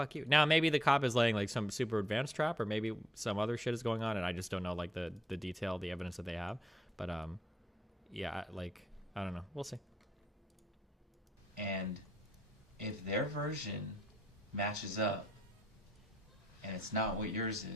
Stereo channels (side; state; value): both; normal; correlation 0.76